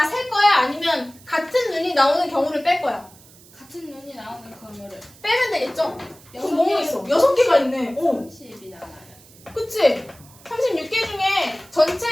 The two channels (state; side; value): noise; right; hiss, 24 dB below the sound